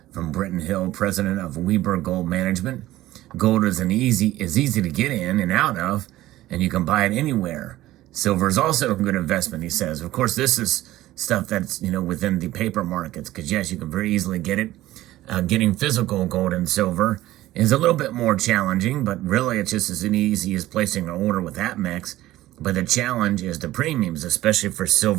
From Britton Hill, president of Weber Gold Management, gold is easy to get in and out of, and you can buy it anywhere. Silver is also a good investment, he says. Of course, this is stuff that's, within the paper markets, because yes, you can very easily get it. Getting physical gold and silver is a little bit more challenging, but really it's just as easy as placing an order with APMEX. But the challenge is the premiums, especially for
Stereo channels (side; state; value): left; quieter; 15.6 dB